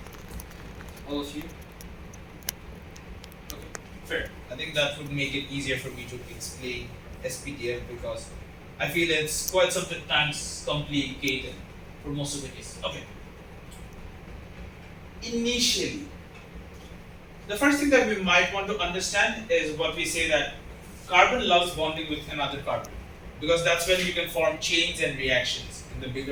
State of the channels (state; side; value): identical; both; correlation 1.00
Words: All of you? Okay, fair. I think that would make it easier for me to explain SPDF because I feel it's quite sometimes complicated for most of the cases. Okay. Initially, the first thing that we might want to understand is what we say that carbon loves bonding with another carbon because that's when you can form chains and reactions in the